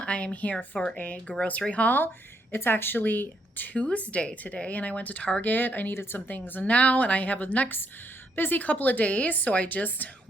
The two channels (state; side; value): normal; both; correlation 0.75